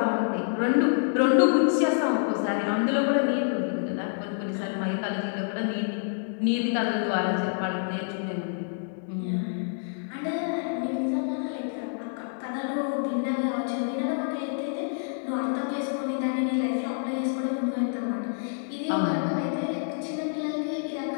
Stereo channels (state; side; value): silent; right; digital silence